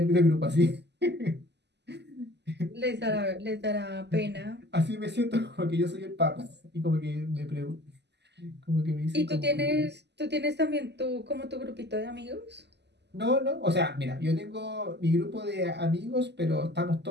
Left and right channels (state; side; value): late; left; 0.50 ms